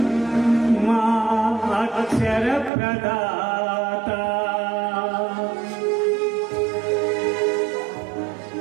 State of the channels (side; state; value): left; drops out; at 2.7 s